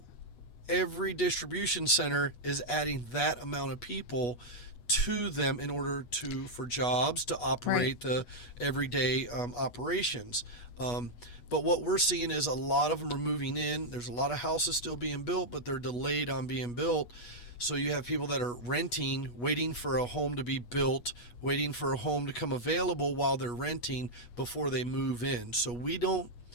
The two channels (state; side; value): late; right; 8.3 ms